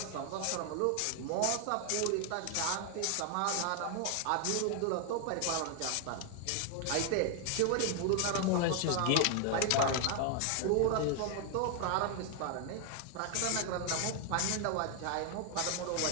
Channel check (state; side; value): different; both; correlation 0.00